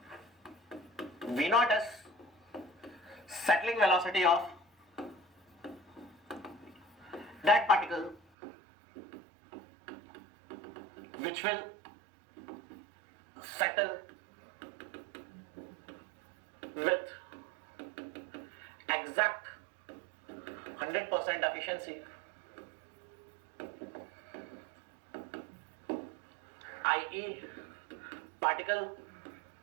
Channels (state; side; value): drops out; left; at 8.2 s